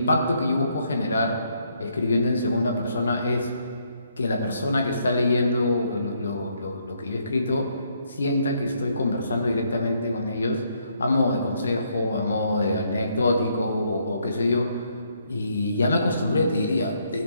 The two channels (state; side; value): inverted; both; correlation -0.72